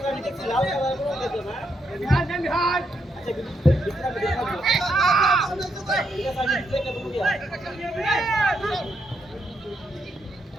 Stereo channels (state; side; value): normal; both; correlation 0.79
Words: আমি দেখছি লাল কালার করে দিতে না আচ্ছা ভিতরে আমি দেখাবো ঠিক আছে আমি দেখে দেবো দিয়া